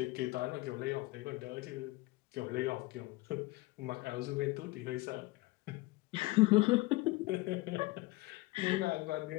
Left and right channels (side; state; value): right; quieter; 21.0 dB